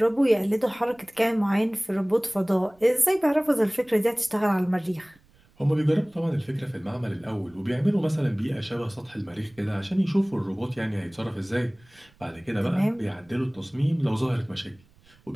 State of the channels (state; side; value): noise; right; rumble, 30 dB below the sound